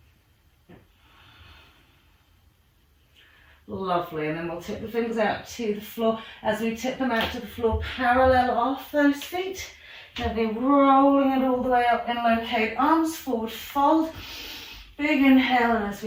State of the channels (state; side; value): identical; both; correlation 1.00